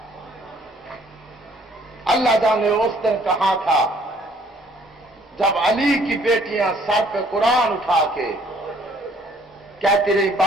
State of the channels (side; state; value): both; normal; correlation 0.61